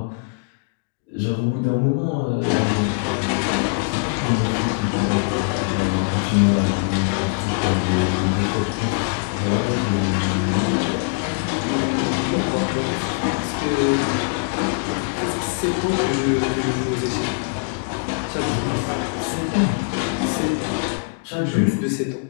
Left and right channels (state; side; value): quieter; right; 39.1 dB